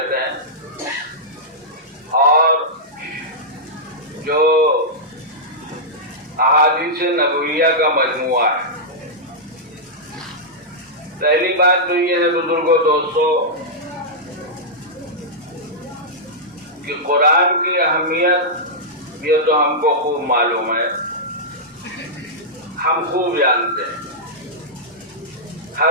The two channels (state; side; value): normal; both; correlation -0.11